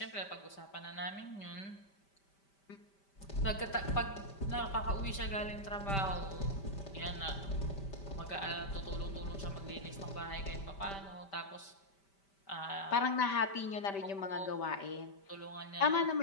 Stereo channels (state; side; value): late; right; 5.1 ms